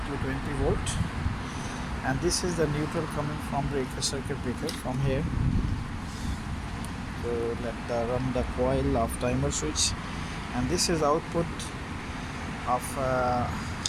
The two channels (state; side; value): identical; both; correlation 1.00